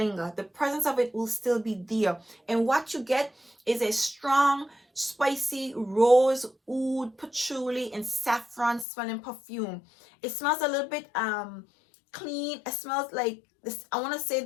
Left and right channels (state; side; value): drops out; right; at 8.8 s